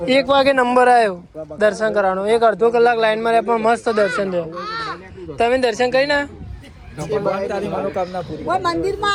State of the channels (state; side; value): identical; both; correlation 1.00